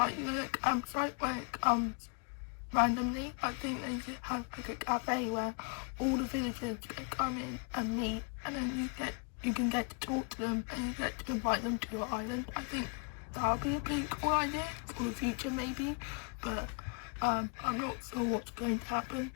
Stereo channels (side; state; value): right; quieter; 36.3 dB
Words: the campsite where it comes randomly, I think they should have like a cafe where all the villagers can come in and meet, and then you can get to talk to them and you get to invite them to your island. I think that would be a pretty cool idea for the future maybe, but I'm not sure what's going to happen.